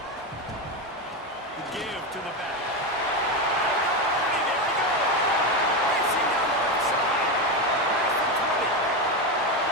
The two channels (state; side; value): normal; both; correlation 0.13